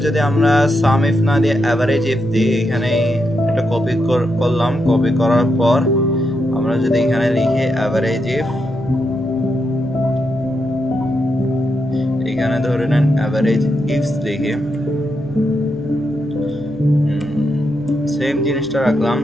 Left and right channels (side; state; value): right; noise; hum, 21 dB below the sound